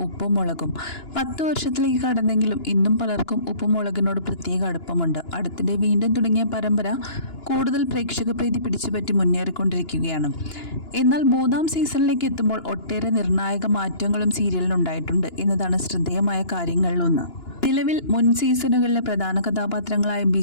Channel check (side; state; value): right; late; 2.9 ms